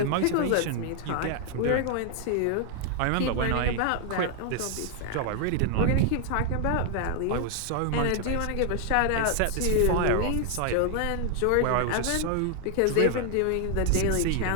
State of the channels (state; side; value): different; both; correlation 0.00